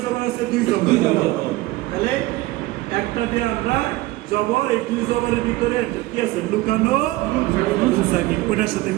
জবর আছে? 2 জবর। তাহলে একটা দিয়ে আমরা জবর, এই 2 জবরের ভিতরে কি আছে? লুকানো নুন সাকিন। ওটার সাথে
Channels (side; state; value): left; quieter; 18.7 dB